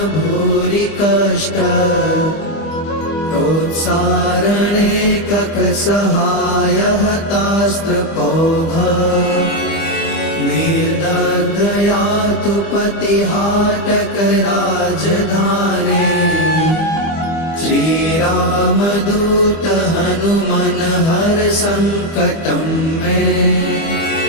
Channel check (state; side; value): late; right; 25 ms